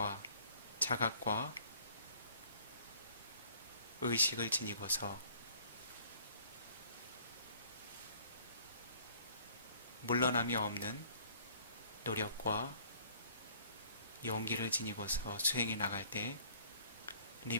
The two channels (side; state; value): both; inverted; correlation -0.56